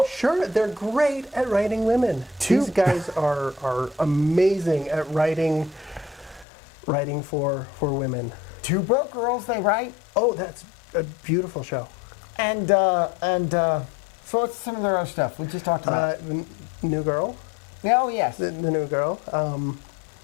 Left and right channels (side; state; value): right; drops out; at 6.5 s